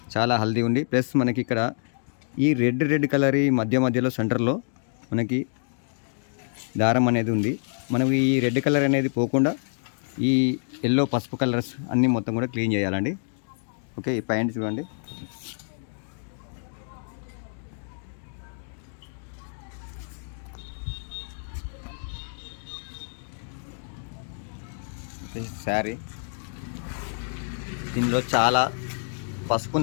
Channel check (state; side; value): silent; right; digital silence